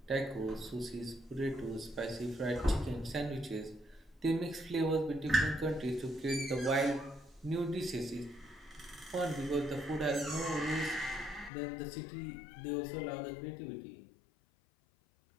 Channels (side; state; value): right; drops out; at 11.5 s